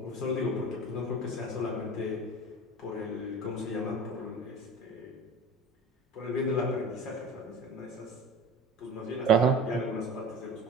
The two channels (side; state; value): both; normal; correlation 0.37